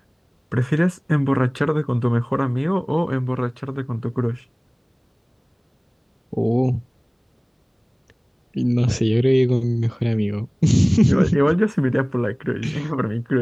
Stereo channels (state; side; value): identical; both; correlation 1.00